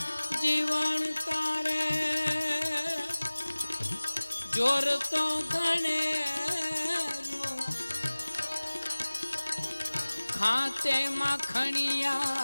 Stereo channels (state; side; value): inverted; both; correlation -1.00